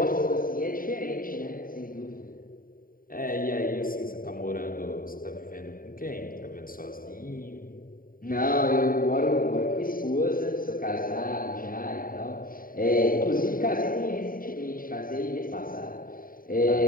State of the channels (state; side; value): late; right; 0.41 ms